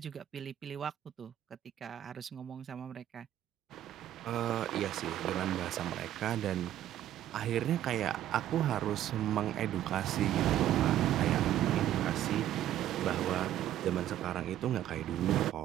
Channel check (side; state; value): left; quieter; 12.1 dB